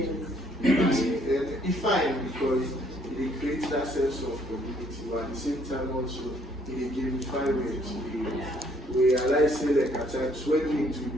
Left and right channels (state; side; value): normal; both; correlation 0.65